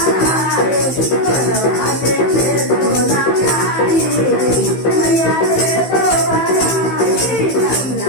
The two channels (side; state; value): right; late; 15 ms